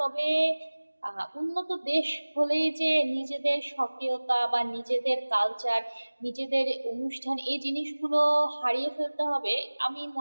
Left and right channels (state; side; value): inverted; both; correlation -1.00